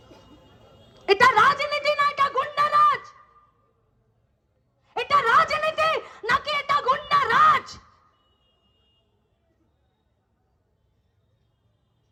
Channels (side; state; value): both; identical; correlation 1.00